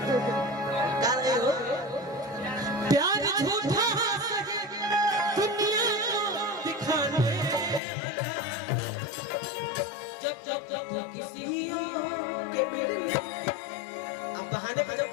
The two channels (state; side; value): drops out; right; at 7.8 s